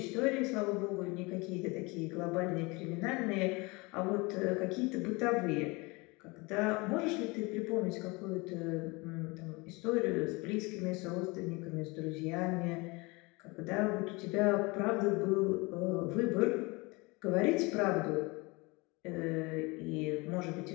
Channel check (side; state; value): right; quieter; 25.8 dB